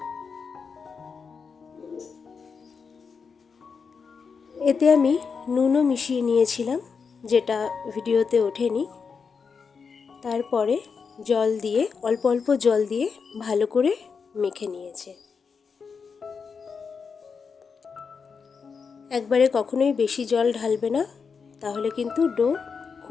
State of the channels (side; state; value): right; quieter; 5.6 dB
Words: এতে আমি নুনও মিশিয়ে নিয়েছিলাম, যেটা ভিডিওতে ওঠেনি। তারপরে জল দিয়ে, অল্প অল্প জল দিয়ে ভালো করে মেখে নিয়েছে। একবারে কখনোই বেশি জল ঢালবে না, তাহলে কিন্তু ডো